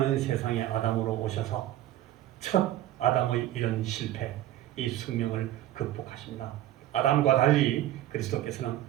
세상의 아담으로 오셔서 첫 아담의 이런 실패, 이 숙명을 극복하십니다. 아담과 달리 그리스도께서는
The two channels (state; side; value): quieter; left; 13.5 dB